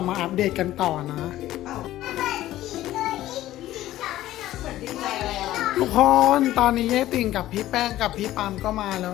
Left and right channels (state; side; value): quieter; right; 14.6 dB